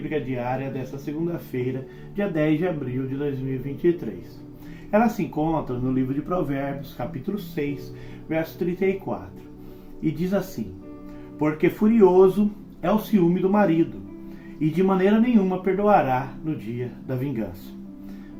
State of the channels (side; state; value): both; identical; correlation 1.00